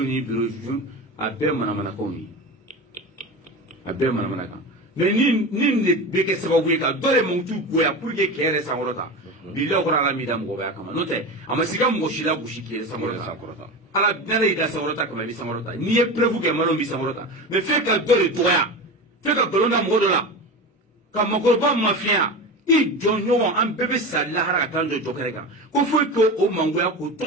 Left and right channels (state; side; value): normal; both; correlation 0.26